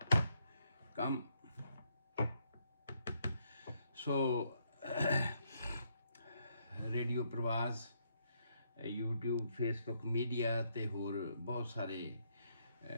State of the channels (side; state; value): both; inverted; correlation -0.75